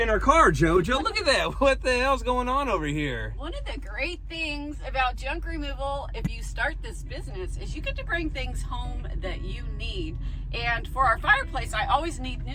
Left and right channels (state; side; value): identical; both; correlation 1.00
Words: our car, JoJo? Look at that. What the hell's going on over here? One of the great things about junk removal, if you start this business, is you get to bring things home that you need. And for our fireplace, I always need